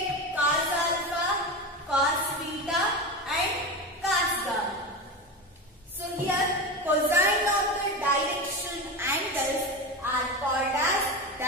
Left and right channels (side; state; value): both; normal; correlation 0.22